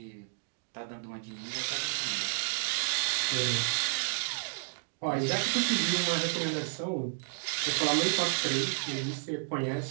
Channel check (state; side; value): silent; left; digital silence